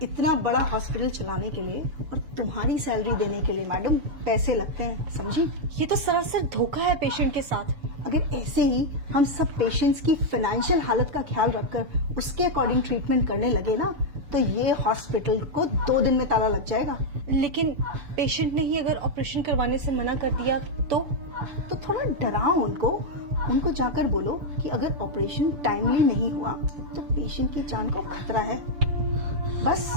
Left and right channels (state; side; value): late; left; 6.9 ms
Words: इतना बड़ा हॉस्पिटल चलाने के लिए और तुम्हारी सैलरी देने के लिए मैडम पैसे लगते हैं, समझी? ये तो सरासर धोखा है पेशेंट के साथ। अगर ऐसे ही हम सब पेशेंट्स की फाइनेंशियल हालत का ख्याल रखकर उसके अकॉर्डिंग ट्रीटमेंट करने लगे ना तो ये हॉस्पिटल को 2 दिन में ताला लग जाएगा। लेकिन पेशेंट ने ही अगर ऑपरेशन करवाने से मना कर दिया तो थोड़ा डराओ उनको जाकर बोलो कि अगर ऑपरेशन टाइमली नहीं हुआ तो पेशेंट की जान को खतरा है। बस